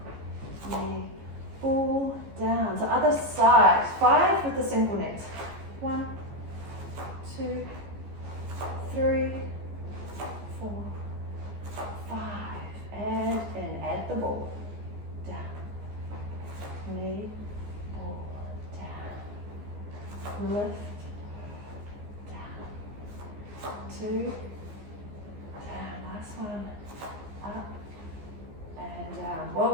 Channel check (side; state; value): left; late; 14 ms